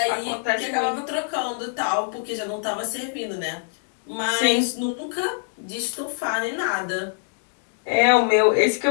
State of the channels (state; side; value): silent; right; digital silence